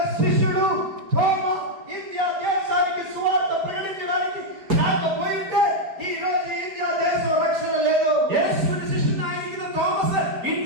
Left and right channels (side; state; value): left; late; 5.1 ms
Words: శిష్యుడు తోమా ఇండియా దేశానికి సువార్త ప్రకటించడానికి రాకపోయింటే ఈ రోజు ఇండియా దేశం రక్షణ లేదు. യേശുവിന്റെ ശിഷ്യനായിരിക്കുന്ന തോമസ്